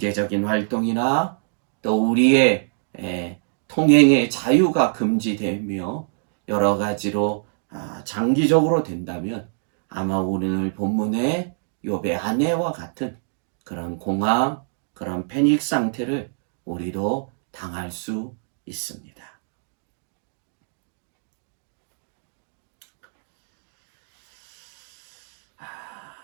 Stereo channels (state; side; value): silent; left; digital silence